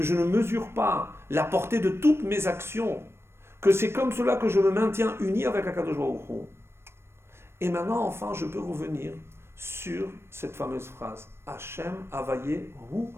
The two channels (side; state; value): left; late; 0.12 ms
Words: je ne mesure pas la portée de toutes mes actions, que c'est comme cela que je me maintiens uni avec Akadosh Baruch Hu. Et maintenant, enfin, je peux revenir sur cette fameuse phrase Hashem Avaye Hu